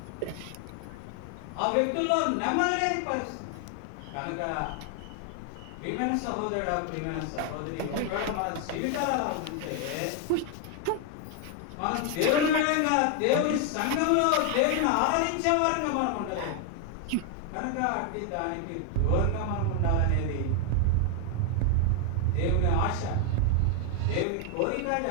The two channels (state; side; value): different; both; correlation 0.00